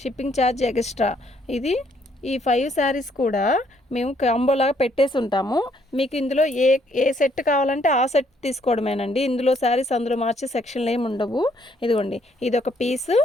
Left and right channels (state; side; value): normal; both; correlation 0.68